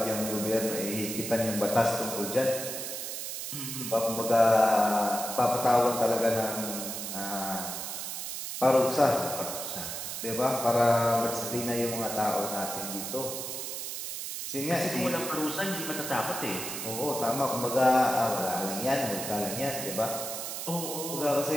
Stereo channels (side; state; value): right; noise; hiss, 5 dB below the sound